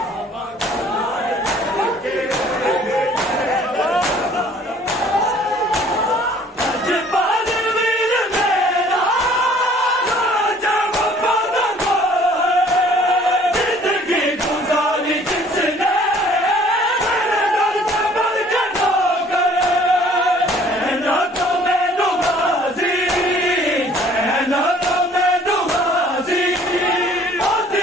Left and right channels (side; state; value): both; normal; correlation 0.55